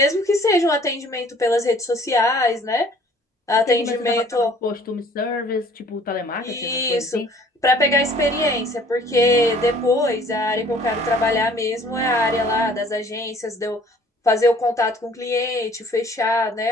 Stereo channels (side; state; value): both; normal; correlation 0.55